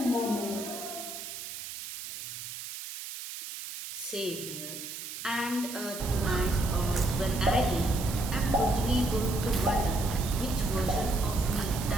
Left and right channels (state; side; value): noise; right; hiss, 9 dB below the sound